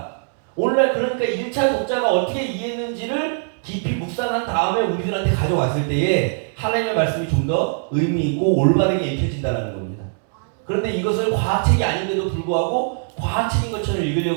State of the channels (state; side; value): silent; left; digital silence